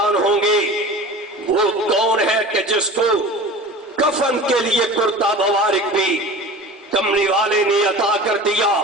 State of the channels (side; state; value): both; normal; correlation 0.37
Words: ہوں گے وہ کون ہے کہ جس کو کفن کے لیے کرتا مبارک بھی کملی والے نے عطا کر دیا۔